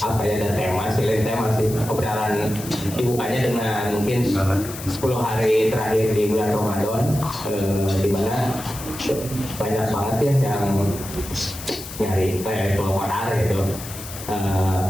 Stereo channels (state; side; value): noise; left; hiss, 12 dB below the sound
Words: apa ya, ada tema sih obrolan dibukanya dengan mungkin 10 hari terakhir di bulan Ramadan, di mana banyak banget ya yang nyari keluar gitu.